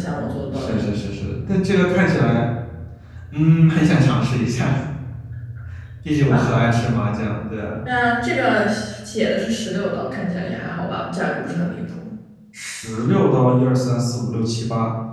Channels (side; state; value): both; identical; correlation 1.00